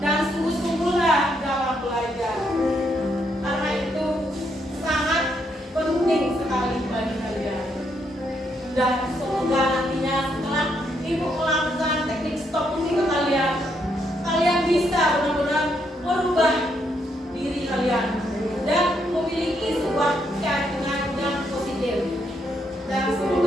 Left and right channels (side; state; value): both; normal; correlation 0.76